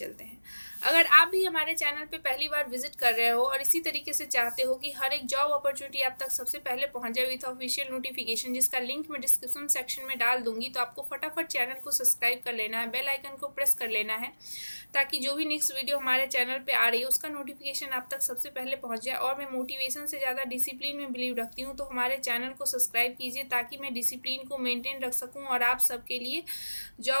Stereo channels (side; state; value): both; inverted; correlation -1.00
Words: हैं। अगर आप भी हमारे चैनल पे पहली बार विजिट कर रहे हो और इसी तरीके से चाहते हो कि हर एक जॉब अपॉर्चुनिटी आप तक सबसे पहले पहुंच जाए विथ ऑफिशियल नोटिफिकेशन, जिसका लिंक मैं डिस्क्रिप्शन सेक्शन में डाल दूंगी, तो आपको फटाफट चैनल को सब्सक्राइब कर लेना है, बेल आइकन को प्रेस कर लेना है, ताकि जो भी नेक्स्ट वीडियो हमारे चैनल पे आ रही है उसका नोटिफिकेशन आप तक सबसे पहले पहुंच जाए। और मैं मोटिवेशन से ज़्यादा डिसिप्लिन में बिलीव रखती हूँ, तो हमारे चैनल को सब्सक्राइब कीजिए ताकि मैं डिसिप्लिन को मेंटेन रख सकूँ और आप सबके लिए